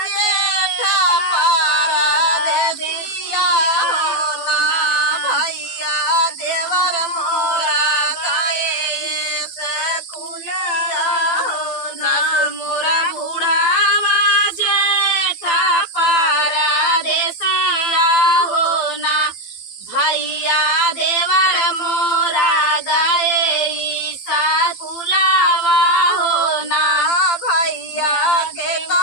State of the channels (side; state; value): right; late; 12 ms